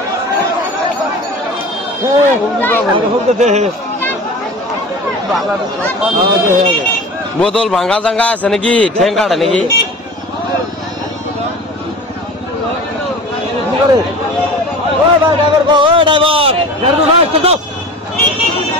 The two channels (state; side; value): normal; both; correlation 0.37